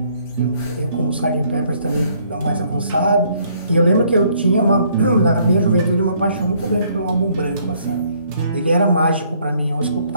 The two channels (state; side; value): inverted; both; correlation -0.65